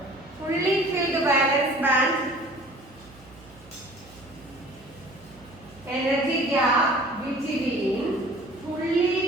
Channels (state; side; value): noise; right; hum, 24 dB below the sound